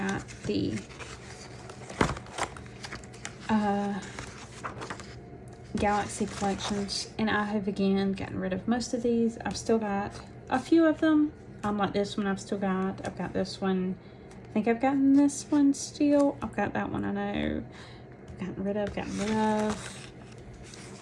the Galaxy collections, and I have again gotten rid of most of these. I've still got a few of them. Like this one I've got this one. I think I've gotten this one still. I've got that one I know. Gotten rid of.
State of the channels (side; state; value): both; identical; correlation 1.00